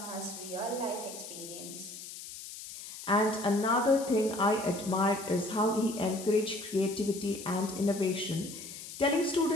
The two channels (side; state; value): left; noise; hiss, 12 dB below the sound